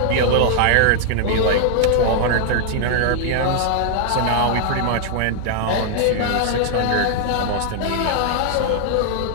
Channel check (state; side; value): different; both; correlation 0.00